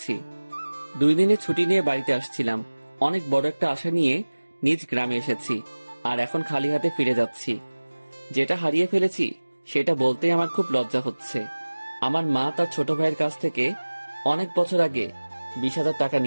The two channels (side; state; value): both; inverted; correlation -1.00